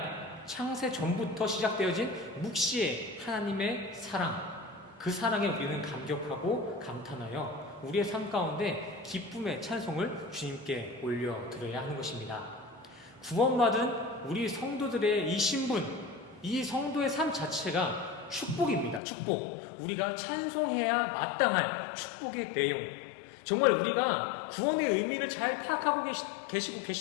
창세 전부터 시작되어진 묵시의 하나님의 사랑, 그 사랑에 우리는 감격하고 감탄하여 우리의 삶 가운데 기쁨의 찬송을 주님께 올려드려야 하는 것입니다. 구원받은 우리 성도들의 이 신분, 이 성도의 삶 자체가 축복입니다. 축복. 우리가 찬송해야 마땅할 축복의 내용. 정말 우리가 구원의 의미를 잘 파악하고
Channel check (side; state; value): right; drops out; at 19.0 s